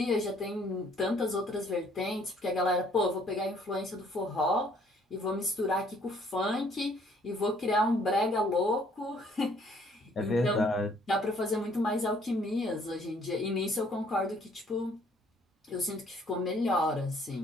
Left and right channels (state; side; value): normal; both; correlation 0.62